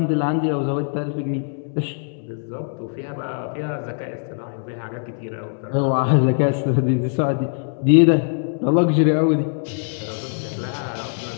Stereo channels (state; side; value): silent; right; 64 dB below the other